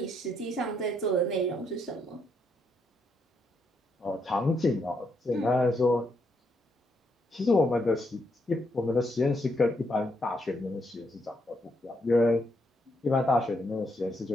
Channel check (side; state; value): both; normal; correlation 0.77